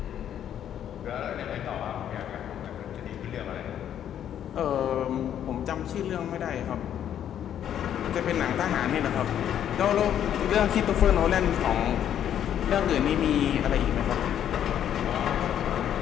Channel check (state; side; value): quieter; right; 10.0 dB